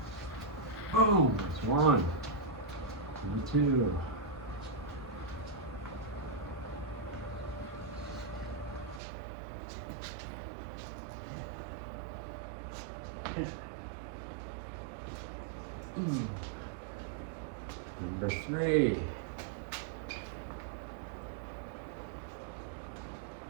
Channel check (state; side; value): drops out; left; at 9.0 s